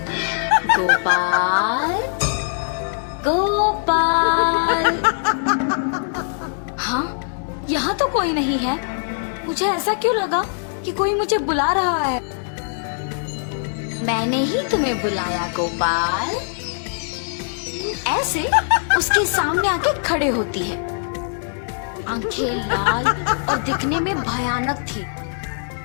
गोपाल, गोपाल। हाँ, यहाँ तो कोई नहीं है। मुझे ऐसा क्यों लगा कि कोई मुझे बुला रहा है? मैंने ही तुम्हें बुलाया गोपाल। ऐसे उसके सामने आके खड़े होती है। आंखें लाल और दिखने में भयानक थी।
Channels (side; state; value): right; silent; digital silence